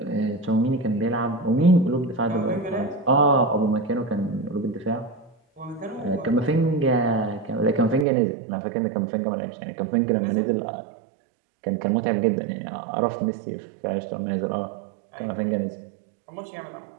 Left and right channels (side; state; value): left; drops out; at 8.1 s